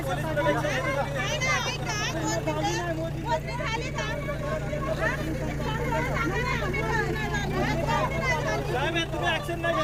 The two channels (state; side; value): identical; both; correlation 1.00